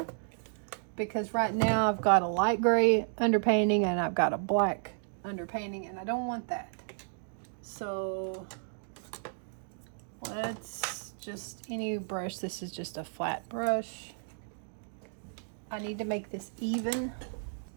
because right now I've got a light gray underpainting and I've got a black underpainting, and I don't want that. So let's just any brush. This is just a flat brush. I need to make this even.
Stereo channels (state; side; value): silent; left; digital silence